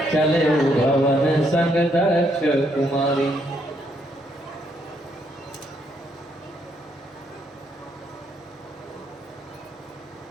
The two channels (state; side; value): normal; both; correlation 0.74